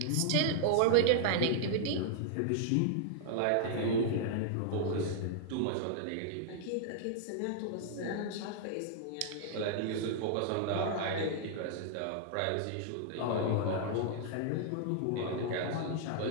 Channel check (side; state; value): both; different; correlation -0.01